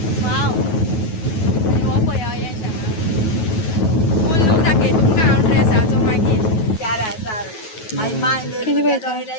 Wow आनी हो पळया अयंश हांगा फूल लूक दाखय तुमकां हांव ड्रेसाचो मागीर कितें पळयता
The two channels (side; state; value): right; late; 9.3 ms